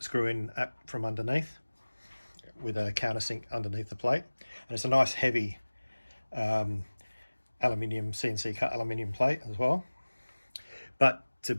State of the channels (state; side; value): inverted; both; correlation -1.00